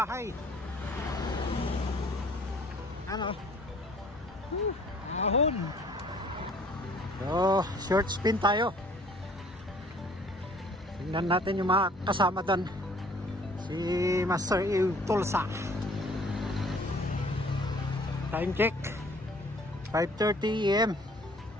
Ano? Ahon. So, short spin tayo. Tingnan natin yung mga kasama doon. Si Master Tulsa. Time check 5:30 AM.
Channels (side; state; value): both; normal; correlation 0.55